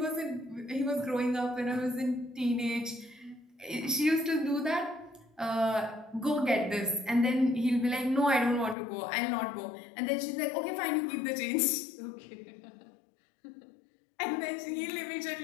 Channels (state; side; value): drops out; right; at 8.8 s